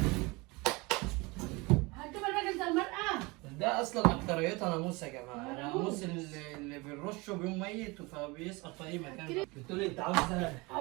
هتجيب الراجل ده المرأة؟ ده اصلا اكتريتها ناموس يا جماعه، ناموس اللي بنرشه بيوم ميت فبيسقط في اي مكان. بتقولي انت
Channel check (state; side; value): quieter; left; 25.1 dB